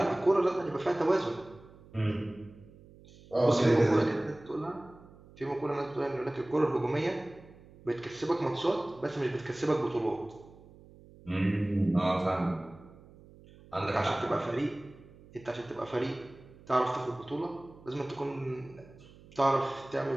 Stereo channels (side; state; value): right; noise; hum, 22 dB below the sound